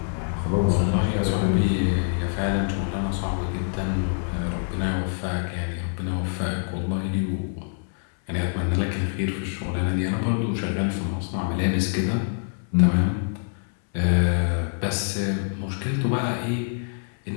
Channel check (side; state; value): right; silent; 62 dB below the other